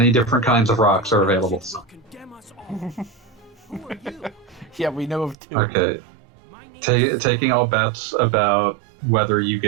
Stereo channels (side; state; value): left; drops out; at 5.4 s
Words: different kinds of rocks are available. You'll condemn us all. Who are you? Yeah, we know of 2. Okay. Taking all bets about whether you